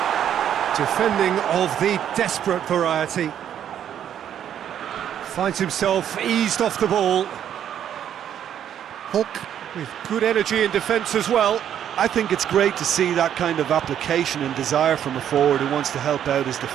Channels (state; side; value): quieter; left; 9.8 dB